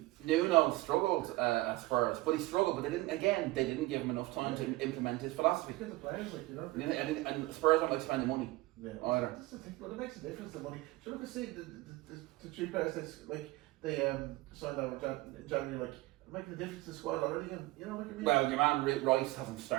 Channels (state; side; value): quieter; left; 19.8 dB